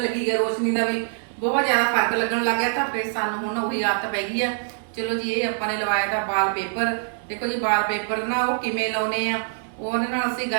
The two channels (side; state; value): left; silent; 62 dB below the other